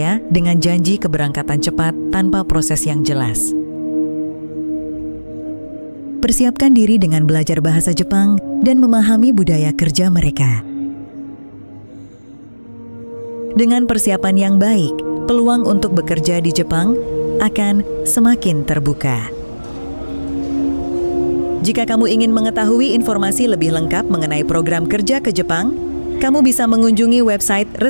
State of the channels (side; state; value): both; inverted; correlation -1.00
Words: dengan janji keberangkatan cepat tanpa proses yang jelas. Persiapkan diri dengan belajar bahasa Jepang dan memahami budaya kerja mereka. Dengan persiapan yang baik, peluang untuk bekerja di Jepang akan semakin terbuka. Jika kamu ingin mengetahui informasi lebih lengkap mengenai program kerja ke Jepang, kamu bisa mengunjungi website